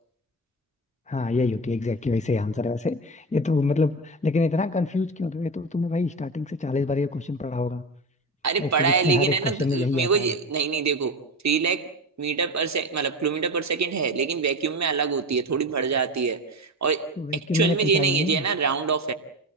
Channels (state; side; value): normal; both; correlation 0.23